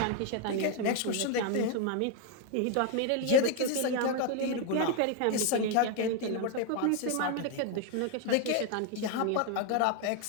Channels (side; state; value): both; different; correlation 0.01